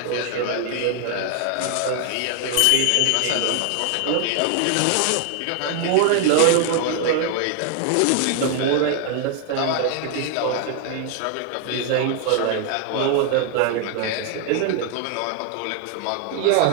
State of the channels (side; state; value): both; different; correlation 0.00